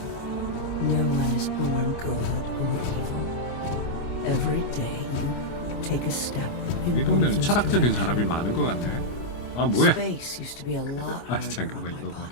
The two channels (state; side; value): late; right; 25 ms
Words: No one is born good or evil. Every day you take a step. 이 동네는 철학적인 사람이 많은 것 같네. 아, 뭐야? Space used to be a lot 아, 잠깐만, 이거 봐.